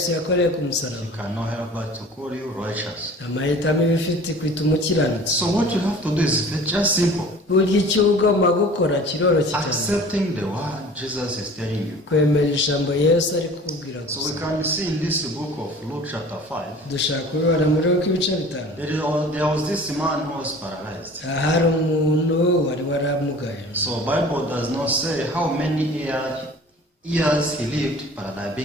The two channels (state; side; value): normal; both; correlation 0.44